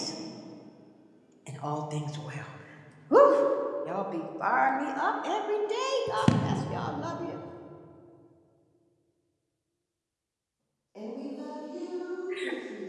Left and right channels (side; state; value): both; identical; correlation 1.00